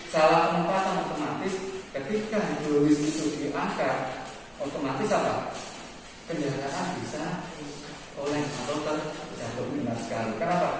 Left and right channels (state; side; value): identical; both; correlation 1.00